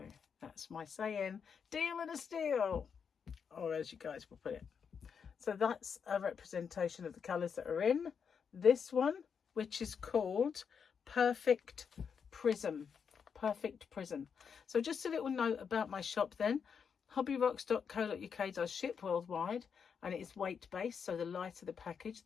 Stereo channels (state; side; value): quieter; right; 6.6 dB